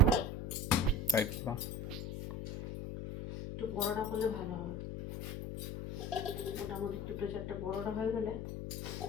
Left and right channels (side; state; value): left; noise; hum, 6 dB below the sound